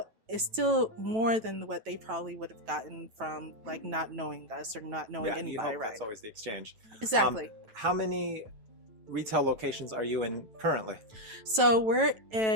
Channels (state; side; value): late; left; 9.1 ms